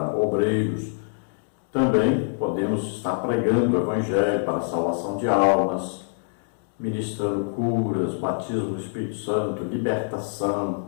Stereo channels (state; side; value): silent; right; digital silence